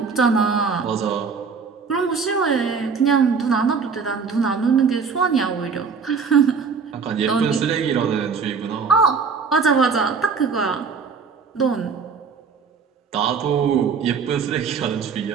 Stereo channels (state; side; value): quieter; left; 5.5 dB